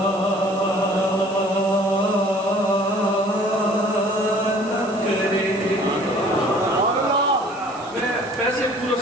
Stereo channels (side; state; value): right; noise; hiss, 22 dB below the sound